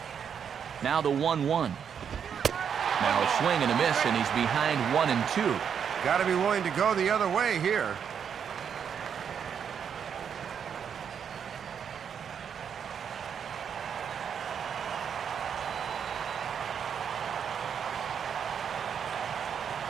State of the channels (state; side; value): quieter; left; 7.6 dB